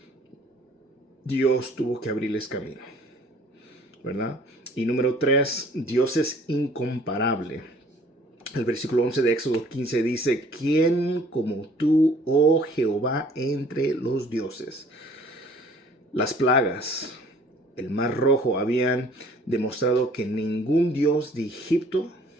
Dios tuvo que abrirles camino, ¿verdad? Y número 3, Dios es incomparable. El versículo 11 de Éxodo 15 dice, ¿quién como tú, oh Jehová, entre los dioses? Las plagas, el mar rojo habían demostrado que ningún dios de Egipto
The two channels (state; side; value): normal; both; correlation 0.55